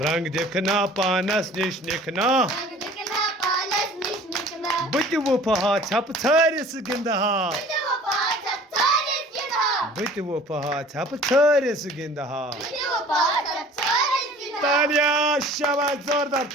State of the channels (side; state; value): both; normal; correlation 0.48